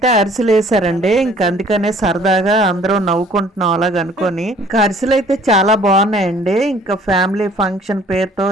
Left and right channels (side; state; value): both; normal; correlation 0.55